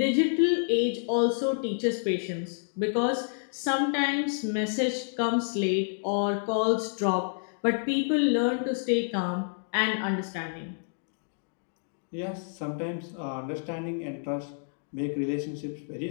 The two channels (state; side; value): silent; right; digital silence